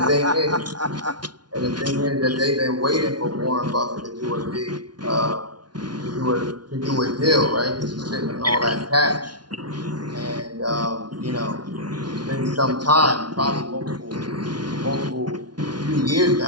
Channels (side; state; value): left; late; 0.70 ms